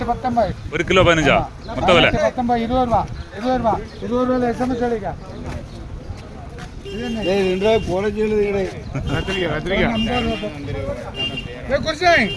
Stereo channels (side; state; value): both; identical; correlation 1.00